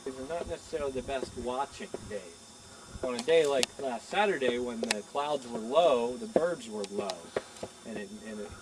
These are not necessarily the best watching days. On a day like last Saturday, when the clouds were low, the birds were low, and it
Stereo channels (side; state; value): both; identical; correlation 1.00